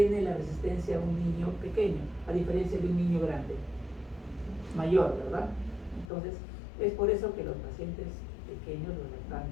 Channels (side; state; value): right; drops out; at 6.1 s